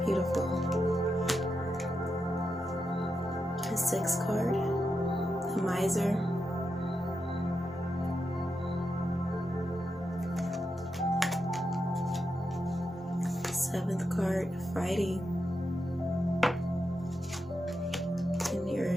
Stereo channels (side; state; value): both; normal; correlation 0.86